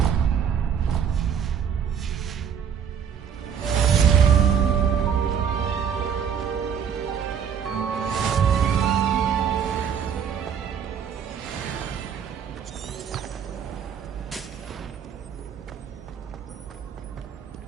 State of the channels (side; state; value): left; quieter; 7.8 dB